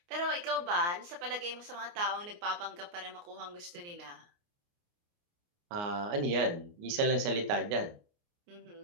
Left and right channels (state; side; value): late; left; 29 ms